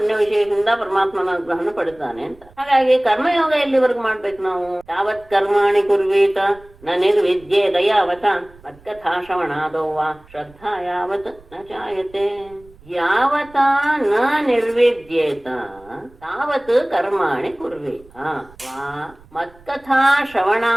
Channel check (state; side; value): noise; right; rumble, 26 dB below the sound